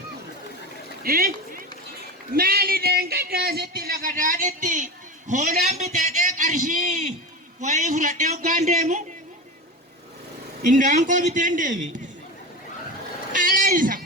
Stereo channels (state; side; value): normal; both; correlation 0.25